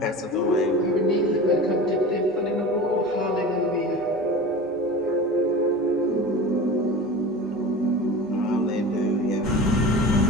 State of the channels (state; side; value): normal; both; correlation 0.34